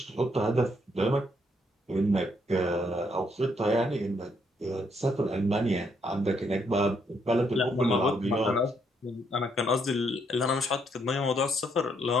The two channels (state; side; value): normal; both; correlation 0.73